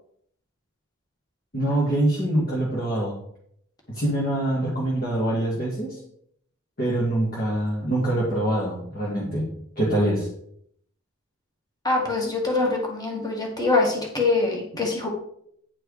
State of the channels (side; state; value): both; normal; correlation 0.52